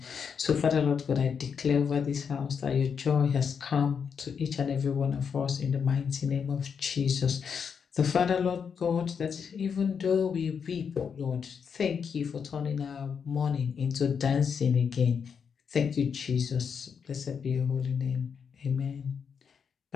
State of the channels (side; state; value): right; quieter; 6.6 dB